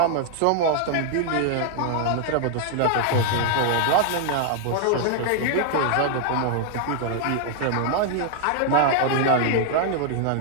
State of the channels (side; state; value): both; different; correlation 0.00